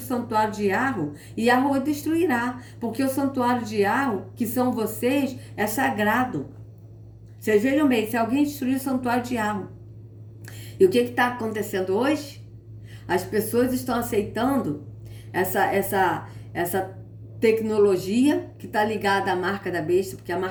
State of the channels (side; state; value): both; identical; correlation 1.00